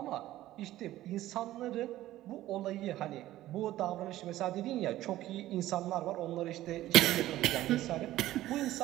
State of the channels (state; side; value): quieter; left; 14.9 dB